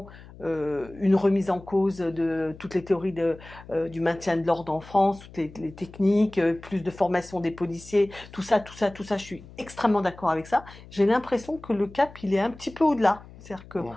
une remise en cause de toutes les théories du maintien de l'ordre en France, toutes les techniques, plus de formation des policiers, tout ça, tout ça, tout ça. Je suis extrêmement d'accord avec ça. J'ai l'impression que le cap, il est un petit peu au-delà. C'est-à-dire que Bon.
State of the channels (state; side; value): noise; left; hum, 19 dB below the sound